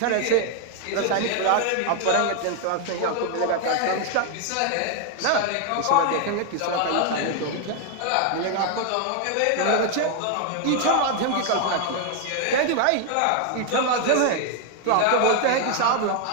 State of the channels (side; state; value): both; different; correlation 0.00